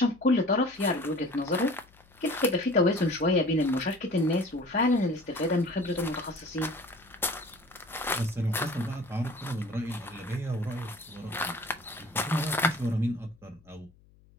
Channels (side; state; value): left; noise; hum, 28 dB below the sound